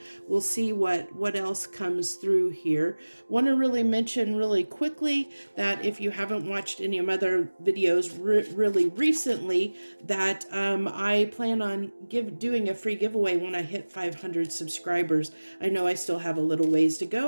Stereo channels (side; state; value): both; inverted; correlation -1.00